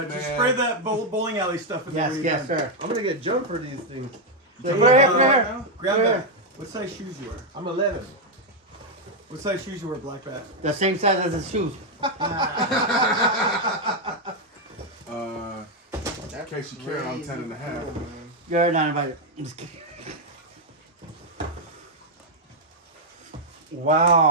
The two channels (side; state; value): both; normal; correlation 0.00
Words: just man. spray that bowling alley stuff in Yes, the yes, sir. I'm gonna get jumped for these things. Put it here, put it here. Grab Put it that. here. What size shoes you wear? I'm 11. What size shoes you wear, Black Bat? The same size as his shoes. In case you care, I'm 10 and a half. You're not invited. I'm just kidding.